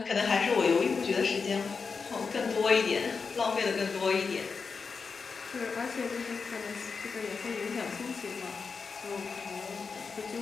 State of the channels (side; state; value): right; quieter; 5.1 dB